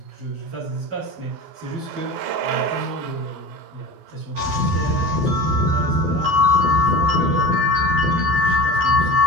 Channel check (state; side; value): late; left; 12 ms